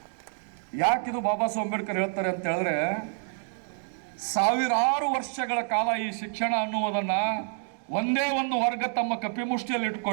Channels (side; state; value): left; silent; 59 dB below the other